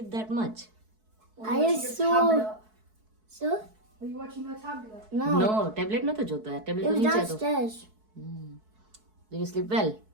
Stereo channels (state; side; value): late; left; 4.6 ms